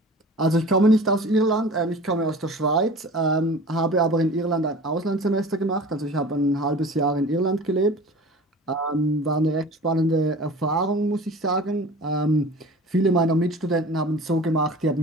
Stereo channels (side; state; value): both; normal; correlation 0.40